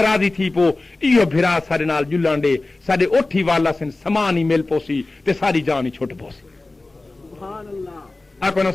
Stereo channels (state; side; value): quieter; right; 3.1 dB